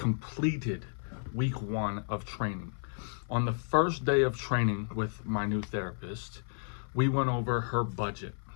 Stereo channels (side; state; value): right; silent; 56 dB below the other